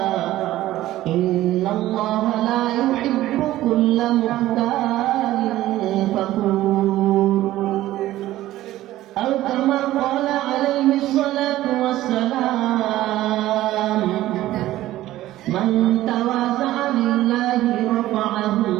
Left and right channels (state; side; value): quieter; left; 15.1 dB